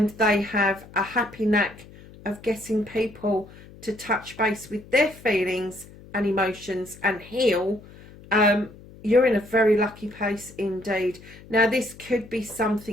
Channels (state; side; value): noise; left; hum, 20 dB below the sound